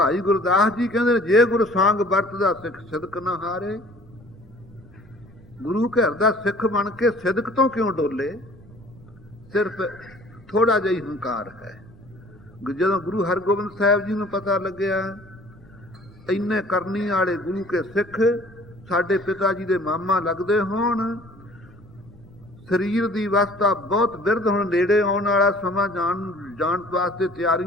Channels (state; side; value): noise; left; rumble, 28 dB below the sound